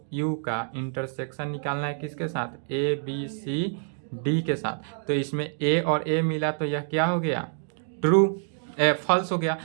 यू का इंटरसेक्शन निकालना है किसके साथ, ए बी सी डी के साथ। तो इसमें ए और ए मिला तो यह क्या हो गया, ट्रू, फॉल्स हो गया,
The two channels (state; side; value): silent; left; digital silence